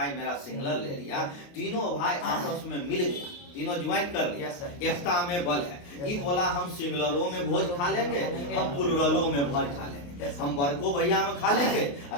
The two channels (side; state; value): right; late; 28 ms